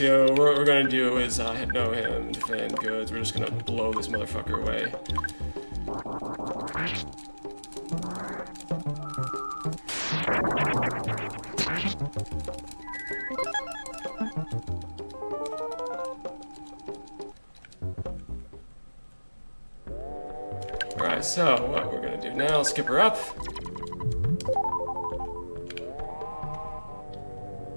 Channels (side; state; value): both; inverted; correlation -1.00